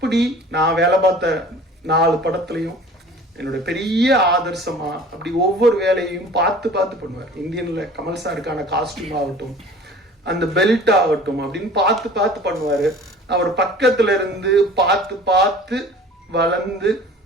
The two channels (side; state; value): both; normal; correlation 0.45